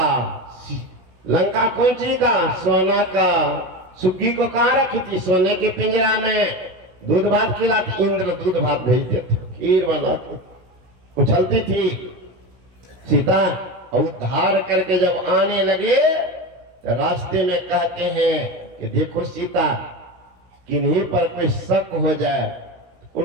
लंका कौन चीज का? सोना का। सुग्गी को कहां रखी थी? सोने के पिंजरा में। दूध भात खिलाते, इंद्र दूध भात भेजते थे, खीर बना के उछलती थी। सीता उद्धार करके जब आने लगे तो रास्ते में कहते हैं कि देखो सीता, किन्हीं पर कोई शक हो जाए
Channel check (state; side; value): late; left; 16 ms